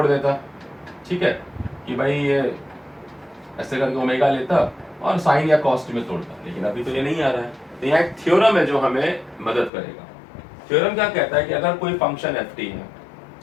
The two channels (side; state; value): right; drops out; at 9.7 s